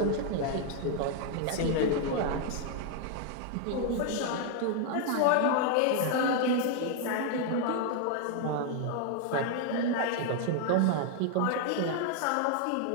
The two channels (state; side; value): different; both; correlation 0.00